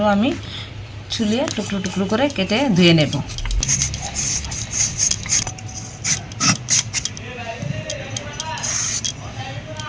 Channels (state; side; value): identical; both; correlation 1.00